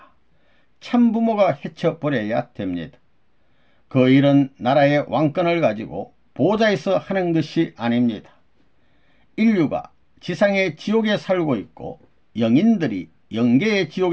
참부모가 헤쳐버려야 됩니다. 그 일은 나라의 왕권을 가지고 보좌에서 하는 것이 아닙니다. 인류가 지상의 지옥에 살고 있고 영인들이 영계의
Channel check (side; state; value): both; identical; correlation 1.00